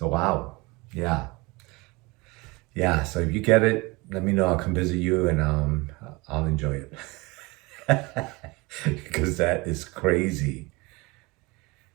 wow. Yeah. Yeah, so if you get it, let me know. I'll come visit you and I'll enjoy it. Because that is crazy.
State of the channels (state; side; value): quieter; left; 25.0 dB